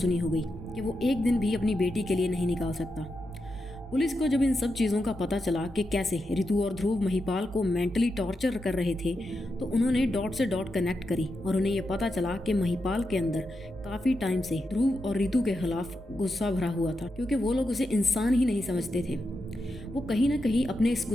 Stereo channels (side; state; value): both; normal; correlation 0.87